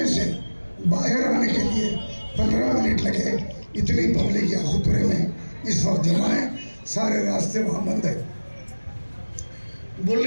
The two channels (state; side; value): inverted; both; correlation -1.00